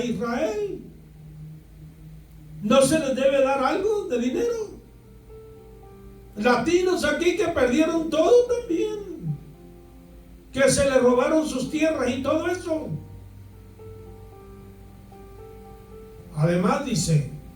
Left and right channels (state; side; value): identical; both; correlation 1.00